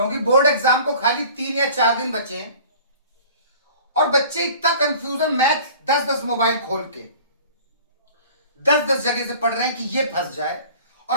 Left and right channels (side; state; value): both; inverted; correlation -0.46